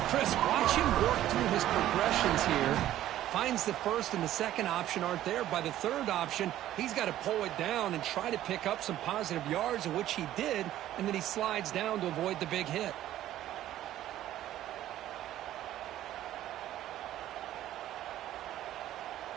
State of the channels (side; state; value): left; quieter; 13.1 dB